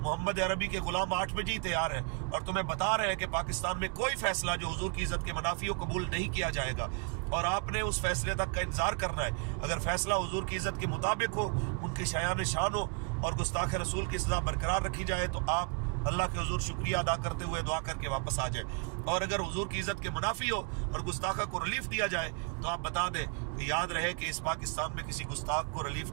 عربی کے غلام 8 بجے ہی تیار ہیں اور تمہیں بتا رہے ہیں کہ پاکستان میں کوئی فیصلہ جو حضور کی عزت کے منافی ہو قبول نہیں کیا جائے گا اور آپ نے اس فیصلے تک کا انتظار کرنا ہے۔ اگر فیصلہ حضور کی عزت کے مطابق ہو، ان کی شایان شان ہو اور گستاخ رسول کی سزا برقرار رکھی جائے تو آپ اللہ کے حضور شکریہ ادا کرتے ہوئے دعا کر کے واپس آ جائیں، اور اگر حضور کی عزت کے منافی ہو اور گستاخہ کو ریلیف دیا جائے تو آپ بتا دیں کہ یاد رہے کہ اس پاکستان میں کسی گستاخ کو ریلیف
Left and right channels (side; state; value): left; quieter; 37.0 dB